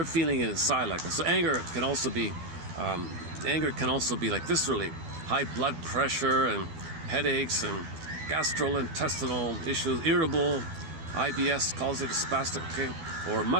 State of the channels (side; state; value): left; late; 12 ms